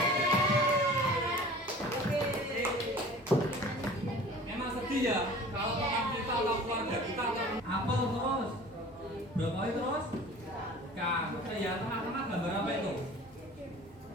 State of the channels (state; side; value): normal; both; correlation 0.44